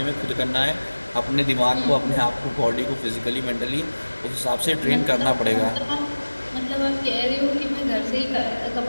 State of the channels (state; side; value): inverted; both; correlation -1.00